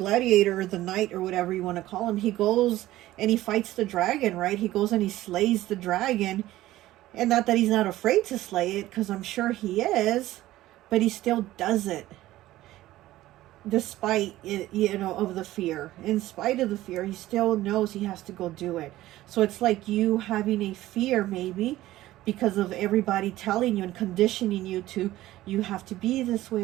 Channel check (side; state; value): left; quieter; 15.7 dB